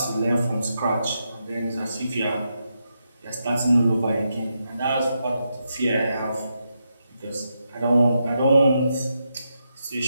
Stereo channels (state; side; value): inverted; both; correlation -0.84